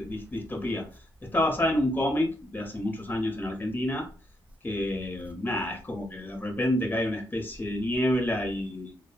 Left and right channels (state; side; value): normal; both; correlation 0.78